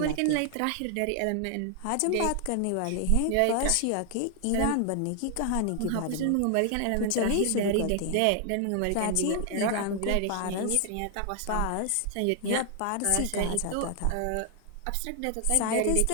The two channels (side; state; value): both; different; correlation 0.00